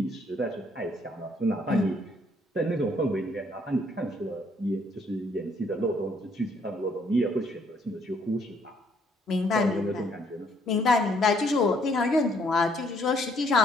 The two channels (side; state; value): both; normal; correlation 0.67